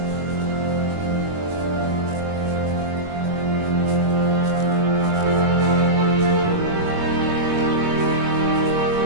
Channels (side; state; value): left; late; 21 ms